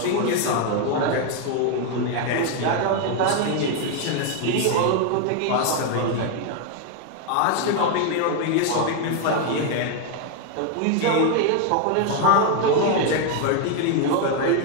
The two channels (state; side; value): different; both; correlation 0.01